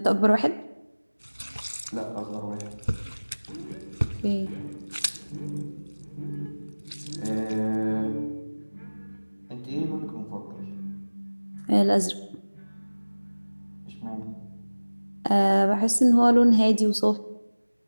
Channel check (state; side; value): inverted; both; correlation -1.00